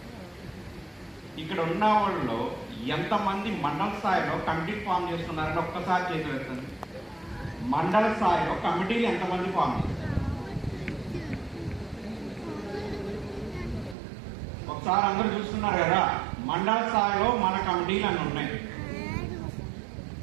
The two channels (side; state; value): left; drops out; at 14.0 s